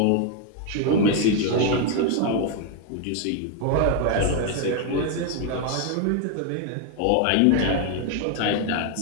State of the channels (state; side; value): different; both; correlation 0.00